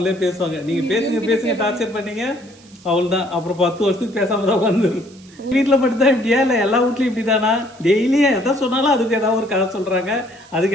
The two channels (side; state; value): right; noise; hiss, 26 dB below the sound